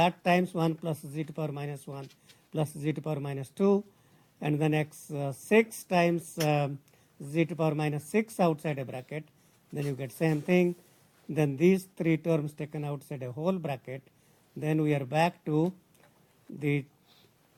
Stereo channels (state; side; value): identical; both; correlation 1.00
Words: times 1 plus Z to power minus 1 plus Z to power minus 2. And then X6 times Z to power minus 6 outside a bracket. Then you get same thing. Then these 3 terms taken outside a whole bracket. Then we are back to the